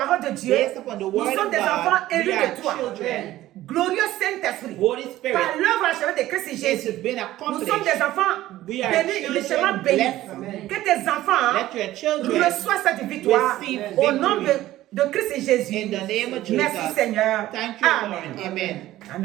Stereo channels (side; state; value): left; quieter; 15.1 dB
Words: de Dieu, Based upon the nous word sommes of des God, enfants élus we are de toi. children. Glorieux Saint-Esprit, Holy Spirit, par l'œuvre achevée de Christ it Jésus, has been nous accomplished. sommes des enfants We are bénis, children richement bénis. blessed. Que tes enfants Let your children reçoivent cette victoire receive au nom victory. de Christ Jésus. In the name of Jesus. Merci Seigneur. Thank you, Amen. Lord. Amen.